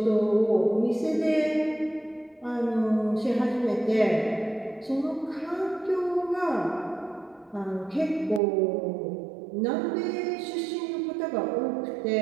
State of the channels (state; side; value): drops out; left; at 8.4 s